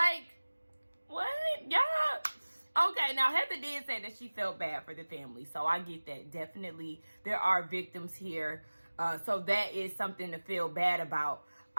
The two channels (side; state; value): both; inverted; correlation -1.00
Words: what? Yeah. Okay, now Heather did say that she felt bad for the family. So I get that. Definitely, there are victims here. So that is something to feel bad about.